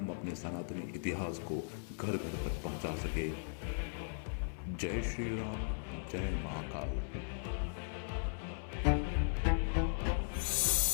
अपने सनातनी इतिहास को घर घर तक पहुंचा सके। जय श्री राम, जय महाकाल।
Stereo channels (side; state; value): right; silent; 53 dB below the other